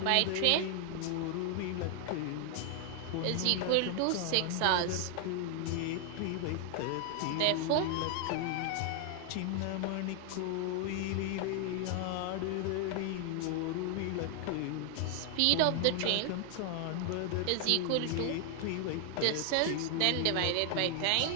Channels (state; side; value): different; both; correlation 0.00